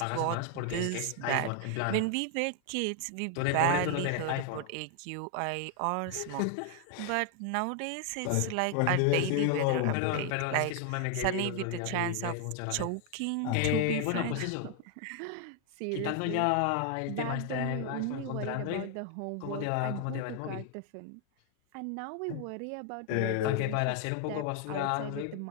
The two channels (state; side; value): different; both; correlation 0.00